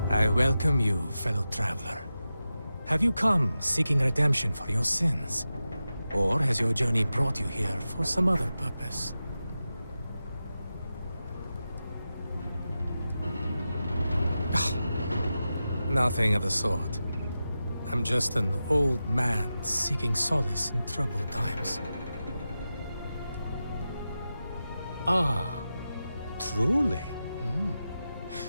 I welcome you, fellow traveler. Have you come seeking redemption for your sins? Or has your journey brought you here for some other purpose? Nothing of the sort. I'm just an old man seeking solace in troubled times. Ah, truly?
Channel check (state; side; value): inverted; both; correlation -0.92